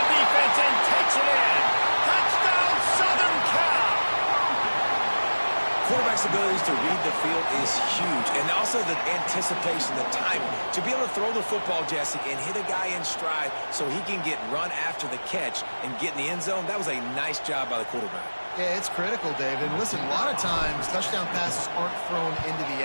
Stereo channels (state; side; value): inverted; both; correlation -1.00